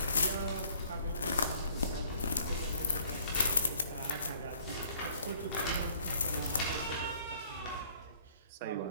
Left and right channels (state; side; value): inverted; both; correlation -0.58